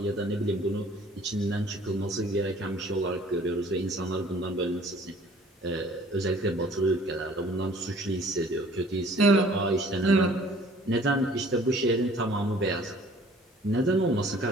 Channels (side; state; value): both; normal; correlation 0.53